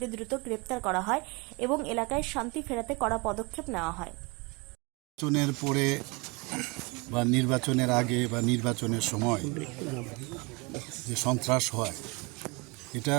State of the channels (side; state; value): left; quieter; 28.1 dB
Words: দ্রুত গ্রেপ্তার করা হয় এবং এলাকায় শান্তি ফেরাতে কড়া পদক্ষেপ নেওয়া হয়। নির্বাচনের পরে বা নির্বাচনের আগে বা নির্বাচনের সময় যে সন্ত্রাস হয়, এটা